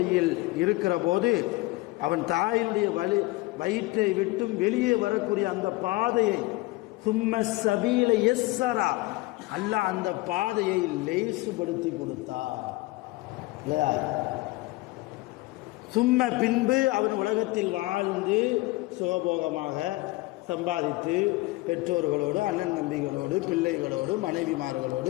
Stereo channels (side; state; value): right; quieter; 20.9 dB